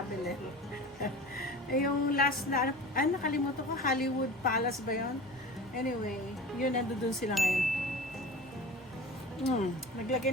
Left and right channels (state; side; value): normal; both; correlation 0.36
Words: Yung last na, nakalimutan ko, Hollywood Palace ba yun? Anyway, yun, nandun sila ngayon. Naglagay